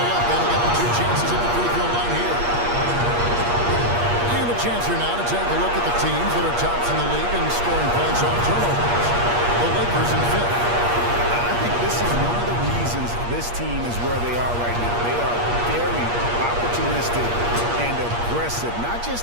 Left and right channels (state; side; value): late; left; 8.5 ms